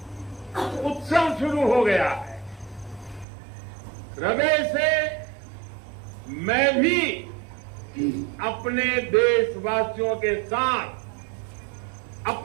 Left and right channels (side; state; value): left; drops out; at 3.2 s